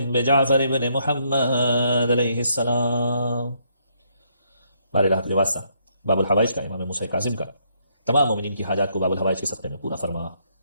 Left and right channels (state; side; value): inverted; both; correlation -0.73